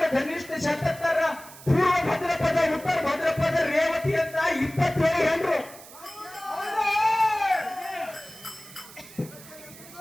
ಧನಿಷ್ಠ ಶತತ್ತರ ಪೂರ್ವ ಭದ್ರಪದ ಉತ್ತರ ಭದ್ರಪದ ರೇವತಿ ಅಂತ 27 ಹೆಂಡ್ರು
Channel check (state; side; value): noise; right; hiss, 18 dB below the sound